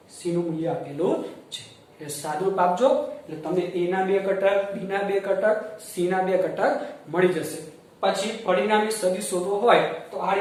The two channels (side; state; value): both; identical; correlation 1.00